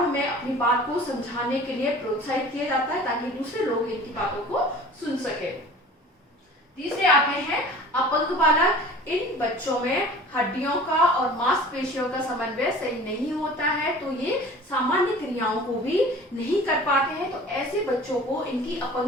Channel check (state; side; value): normal; both; correlation 0.43